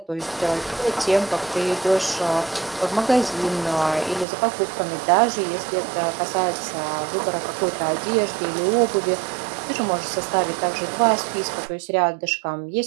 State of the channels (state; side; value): drops out; left; at 4.2 s